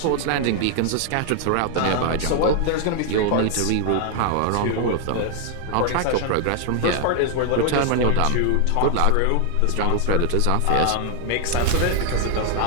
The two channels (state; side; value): different; both; correlation 0.00